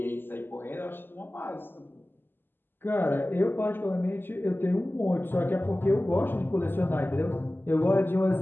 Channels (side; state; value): right; late; 0.096 ms